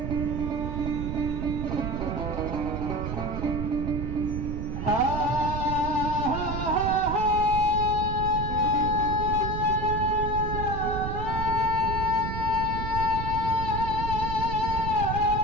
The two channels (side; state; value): right; noise; rumble, 3 dB below the sound